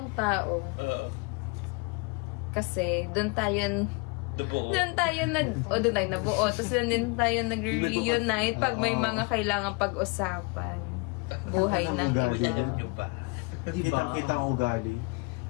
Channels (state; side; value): quieter; right; 29.0 dB